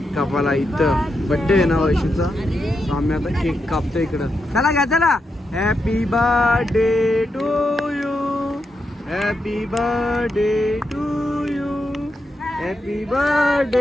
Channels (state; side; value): normal; both; correlation 0.85